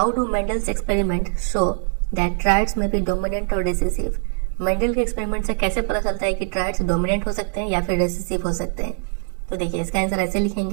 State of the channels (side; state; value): left; silent; 64 dB below the other